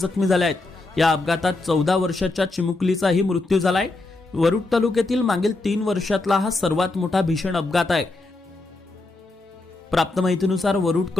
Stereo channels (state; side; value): quieter; right; 3.1 dB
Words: झाले आहेत। या अपघातात 14 वर्षाच्या चिमुकलीचाही मृत्यू झालाय। वरुड तालुक्यातील मागील 3 वर्षातला हा सर्वात मोठा भीषण अपघात आहे। प्राप्त माहितीनुसार